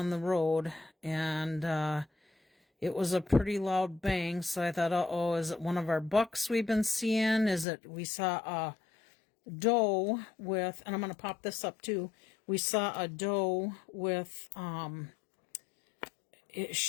the road, and it was a pretty loud bang. So I thought, uh-oh, is it one of our bucks we've been seeing? Is it, we saw a doe with, and I'm going to pop this up too. We saw a doe with,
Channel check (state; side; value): drops out; right; at 7.7 s